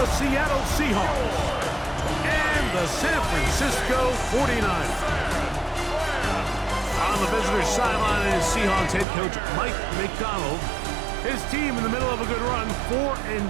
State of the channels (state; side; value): drops out; left; at 9.1 s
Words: Seattle Seahawks and the San Francisco 49ers. On the visitor's sideline is Seahawks head coach Mike McDonald. His team in the middle of a good run,